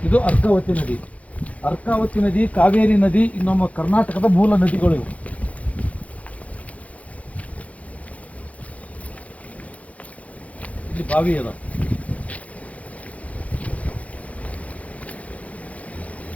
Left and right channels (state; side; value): late; right; 0.067 ms